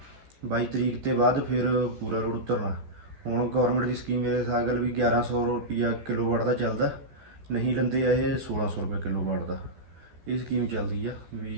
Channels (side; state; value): left; late; 14 ms